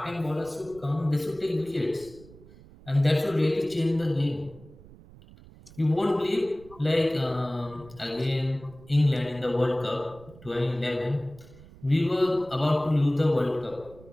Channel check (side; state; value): right; noise; rumble, 21 dB below the sound